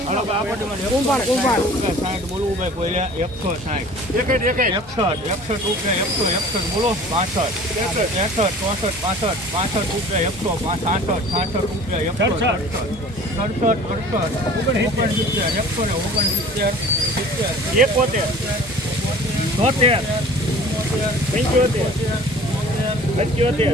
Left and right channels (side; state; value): both; normal; correlation 0.45